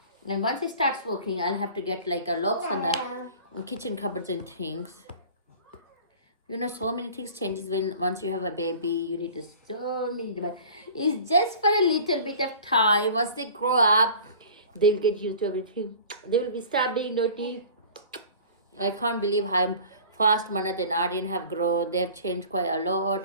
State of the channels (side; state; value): both; inverted; correlation -0.43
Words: And once it starts working, I'll have to get like a locks on the kitchen cupboards and things. So many things changes once you have a baby. You need to so many devices. It's just for a little bit of time. Once they grow up, they'll get used to everything. They will be start being naughty. I can't believe how fast Manat and Aryan have grown. They have changed quite a